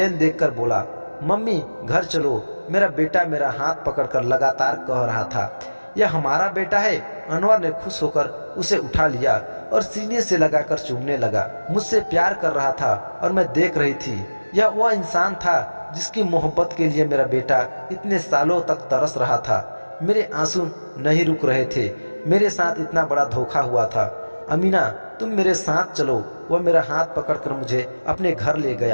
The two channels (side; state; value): both; inverted; correlation -1.00